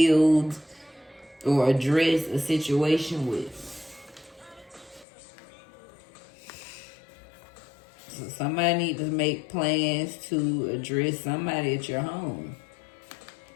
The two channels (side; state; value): right; drops out; at 5.1 s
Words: or address a situation with. So somebody need to make plans to address somebody at your home.